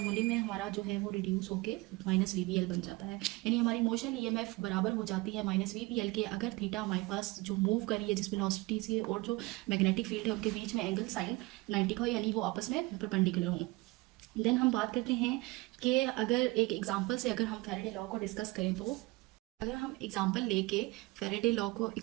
में हमारा जो है वो रिड्यूस होके -VBL बन जाता है। यानी हमारी इमोशनल ईएमएफ बराबर हो जाती है -VBL के अगर थीटा हमारे पास जो मूव कर रही है जिस वेलोसिटी से और जो मैग्नेटिक फील्ड है उनके बीच में एंगल साइन 90 का हो, यानी वो आपस में परपेंडिकुलर हो। देन हम बात करते हैं कि अगर एक एग्जाम्पल से अगर हम फैराडे लॉ को डिस्कस करें तो अगर हम एग्जाम्पल लेके फैराडे लॉ को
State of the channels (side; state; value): left; quieter; 22.2 dB